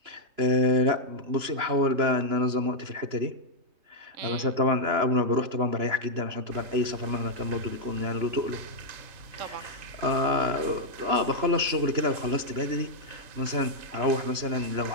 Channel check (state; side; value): late; left; 3.0 ms